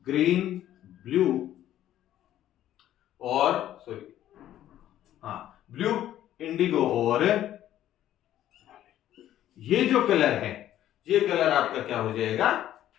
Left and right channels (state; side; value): quieter; right; 12.3 dB